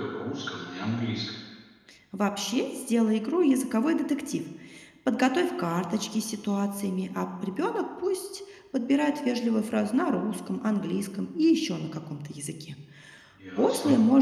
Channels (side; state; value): both; identical; correlation 1.00